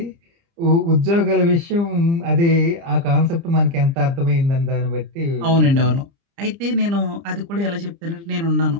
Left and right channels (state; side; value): late; left; 30 ms